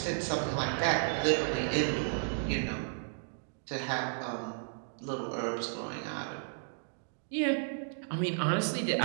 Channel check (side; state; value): left; silent; digital silence